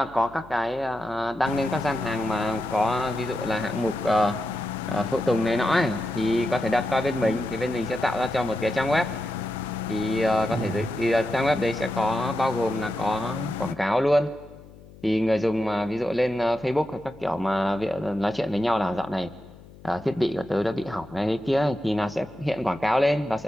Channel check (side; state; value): left; noise; hum, 21 dB below the sound